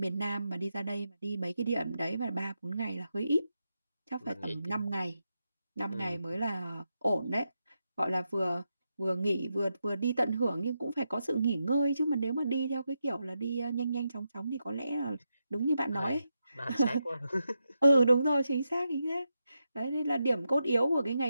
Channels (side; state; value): both; inverted; correlation -0.86